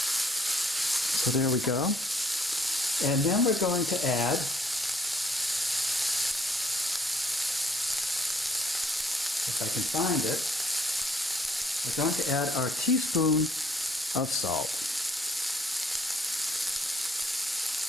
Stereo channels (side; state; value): both; normal; correlation 0.64